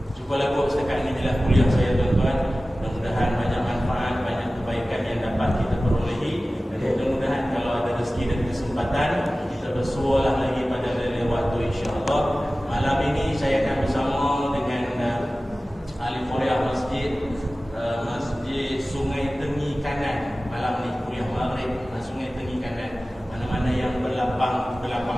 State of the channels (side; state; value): both; normal; correlation 0.96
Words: Cubalah buat setakat ini adalah kuliah saya tuan-tuan. Mudah-mudahan banyak manfaat, banyak kebaikan yang dapat kita perolehi. Dan mudah-mudahan kalau ada rezeki dan kesempatan, kita bersualah lagi pada lain waktu insya-Allah. Malam ini saya akan bersama dengan ahli Korea Masjid Sungai Tengi Kanan. Malam ni kuliah maghrib Sungai Tengi Kanan. Mana-mana yang berlapang